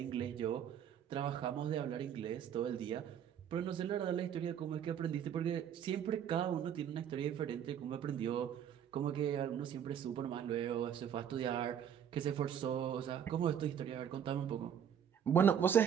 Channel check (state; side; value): quieter; left; 8.8 dB